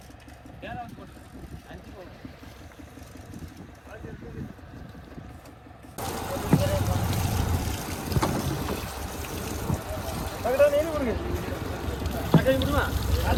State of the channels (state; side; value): identical; both; correlation 1.00